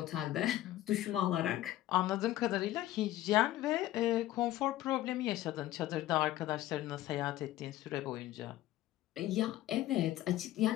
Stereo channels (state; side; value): quieter; right; 14.7 dB